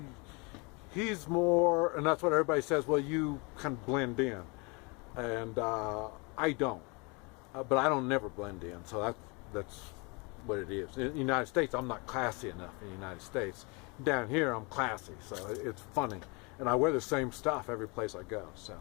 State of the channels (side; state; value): right; quieter; 29.9 dB